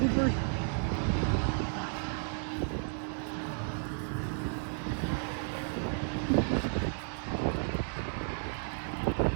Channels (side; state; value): left; silent; 56 dB below the other